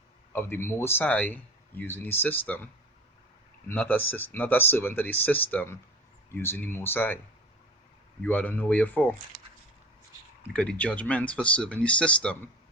of the Most High using the system, not a servant of the system using the Most High. You ought to know where you're for. Because the judgment for serving the system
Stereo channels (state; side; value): normal; both; correlation 0.36